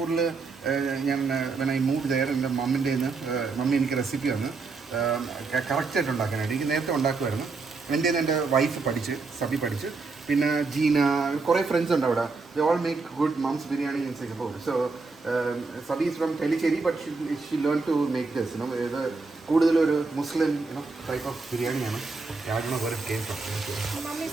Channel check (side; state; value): left; quieter; 4.1 dB